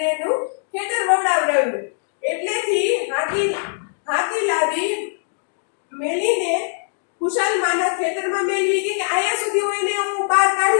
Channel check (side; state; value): right; silent; digital silence